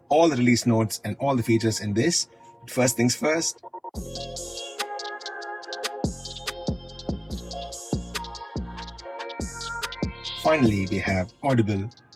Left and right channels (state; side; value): identical; both; correlation 1.00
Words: all the release notes and all the features in this. But first things first. Finally, we have Audible, and